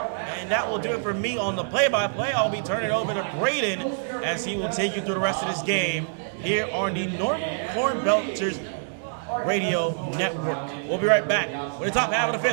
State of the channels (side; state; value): left; silent; 61 dB below the other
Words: and that will do it for me on the play-by-play. I'll be turning it over to Braden as he will take you through the rest of this game here on the Normal Cornbelters Radio Network. We'll be right back with the top half of the